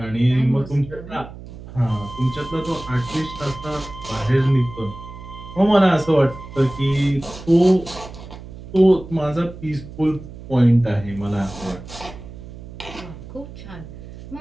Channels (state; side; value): noise; right; hum, 14 dB below the sound